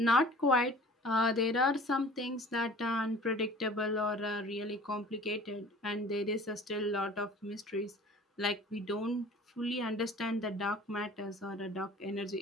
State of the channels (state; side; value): normal; both; correlation 0.46